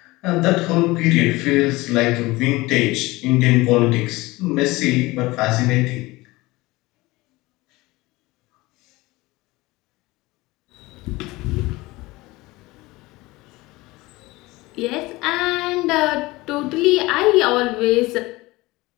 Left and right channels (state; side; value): quieter; right; 20.8 dB